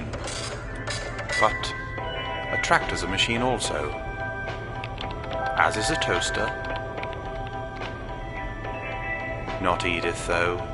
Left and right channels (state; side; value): identical; both; correlation 1.00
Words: But a tractor's a machine also. As is a toaster. Not Edith, though.